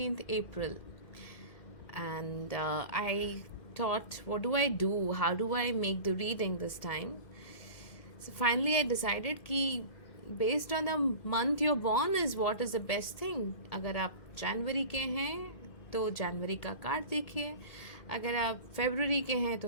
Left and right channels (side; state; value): right; late; 2.1 ms